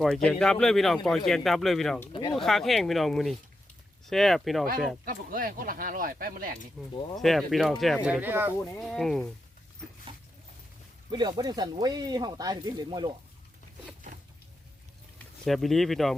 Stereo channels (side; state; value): both; normal; correlation 0.86